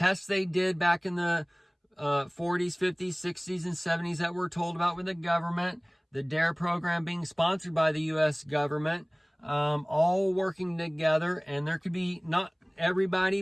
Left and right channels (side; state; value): both; identical; correlation 1.00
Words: they did back in the 40s, 50s, 60s, and 70s that we're told about with the government, the DARE program being sponsored by the U.S. government, all working together. And there could be, not everybody,